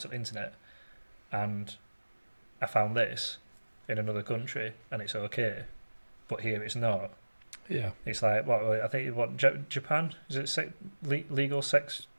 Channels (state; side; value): inverted; both; correlation -1.00